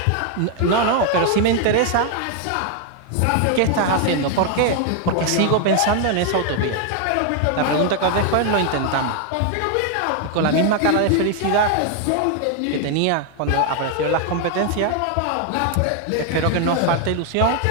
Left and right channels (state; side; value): different; both; correlation 0.00